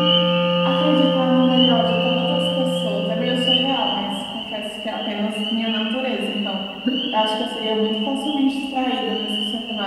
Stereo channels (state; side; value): identical; both; correlation 1.00